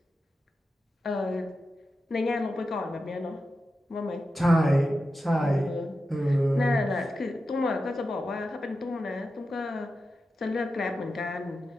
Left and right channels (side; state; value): both; normal; correlation 0.91